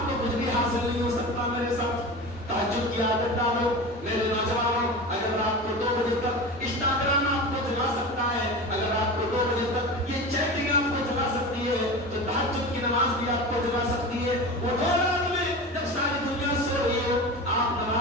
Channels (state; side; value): normal; both; correlation 0.29